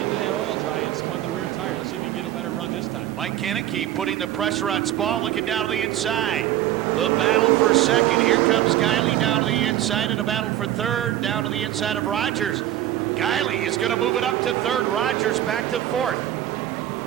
that oil dry and spun the rear tire. Let's see if he can get a better run this time. Mike Kaneki putting the pressure on Spa, looking down to the inside. The battle for second. Here comes Guiley down to the inside, and a battle for third down to the inside of Rogers. Guiley is going to move it up to third. Rogers back to fourth.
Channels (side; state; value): left; quieter; 12.7 dB